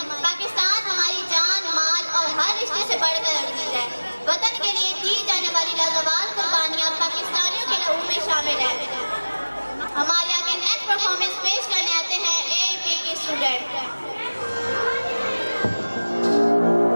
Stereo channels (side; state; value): both; inverted; correlation -1.00